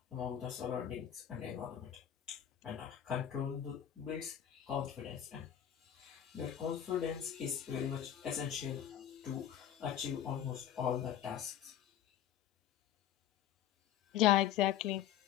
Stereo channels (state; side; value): quieter; right; 10.4 dB